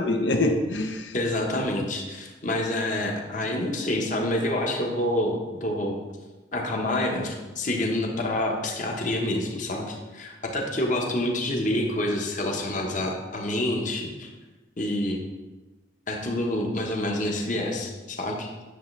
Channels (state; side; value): normal; both; correlation 0.43